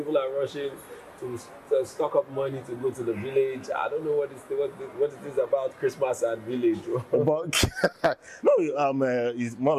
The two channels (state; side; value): identical; both; correlation 1.00